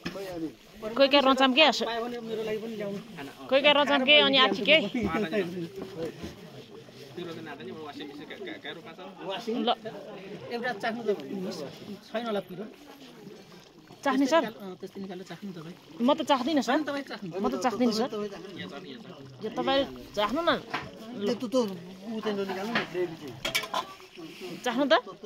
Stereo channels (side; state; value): both; identical; correlation 1.00